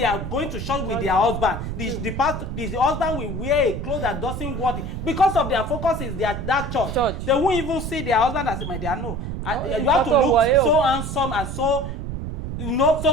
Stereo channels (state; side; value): noise; right; rumble, 5 dB below the sound